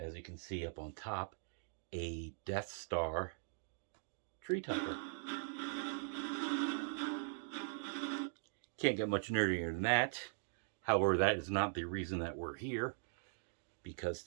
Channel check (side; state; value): left; silent; digital silence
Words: you can see up on top, a Death Star tree topper. Can't get much nerdier than that. However, that is not the reason that we're here, because